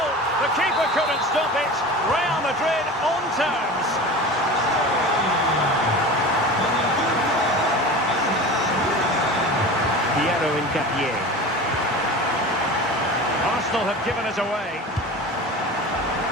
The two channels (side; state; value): both; normal; correlation 0.33